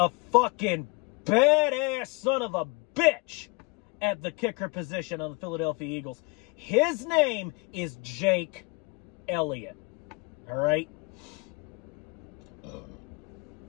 fucking badass son of a bitch at the kicker position on the Philadelphia Eagles. His name is Jake Elliott. All right?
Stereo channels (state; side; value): quieter; right; 28.3 dB